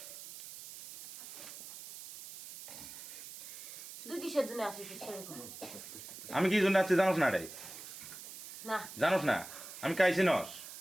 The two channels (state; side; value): noise; right; hiss, 12 dB below the sound